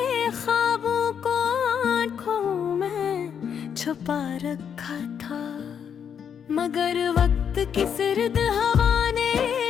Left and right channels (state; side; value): quieter; right; 7.8 dB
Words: ख्वाबों को आंखों में छुपा रखा था। मगर वक्त की सर्द हवा ने